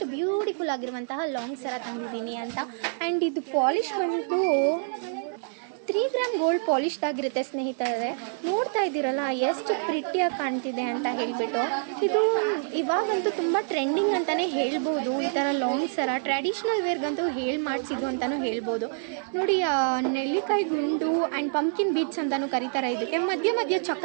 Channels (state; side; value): silent; left; digital silence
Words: ಬ್ಯೂಟಿಫುಲ್ ಆಗಿರುವಂತಹ ಲಾಂಗ್ ಸರ ತಂದಿದ್ದೀನಿ ಅಂತ. ಆ್ಯಂಡ್ ಇದು ಪಾಲಿಶ್ ಬಂದು 3 ಗ್ರಾಮ್ ಗೋಲ್ಡ್ ಪಾಲಿಶ್ದಾಗಿರುತ್ತೆ ಸ್ನೇಹಿತರೆ. ನೋಡ್ತಾ ಇದ್ದೀರಲ್ಲ, ಎಷ್ಟು ಪ್ರಿಟ್ಟಿಯಾಗಿ ಕಾಣ್ತಿದೆ ಅಂತ ಹೇಳಿಬಿಟ್ಟು. ಇದು ಇವಾಗಂತೂ ತುಂಬ ಟ್ರೆಂಡಿಂಗ್ ಅಂತಲೇ ಹೇಳ್ಬೋದು. ಈ ಥರ ಲಾಂಗ್ ಸರ ಟ್ರ್ಯಾಡಿಷ್ನಲ್ ವೇರ್ಗಂತೂ ಮಾಡಿಸಿದ್ದು ಅಂತಲೂ ಹೇಳ್ಬೋದು. ನೋಡಿ, ನೆಲ್ಲಿಕಾಯಿ ಗುಂಡು ಆ್ಯಂಡ್ ಪಂಪ್ಕಿನ್ ಬೀಡ್ಸ್ ಅಂತಲೂ ಕರೀತಾರೆ. ಇದಕ್ಕೆ ಮಧ್ಯ